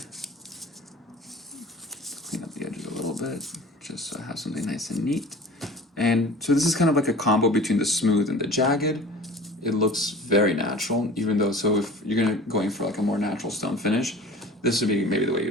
Clean up the edges a little bit, just so I have something nice and neat. And so this is kind of like a combo between the smooth and the jagged. It looks very natural, even though, so if you're going for like a more natural stone finish, this would be maybe the way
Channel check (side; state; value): both; normal; correlation 0.42